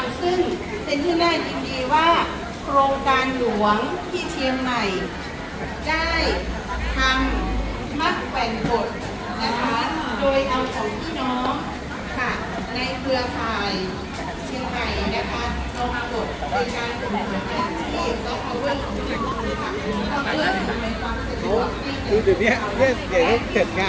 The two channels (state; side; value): identical; both; correlation 1.00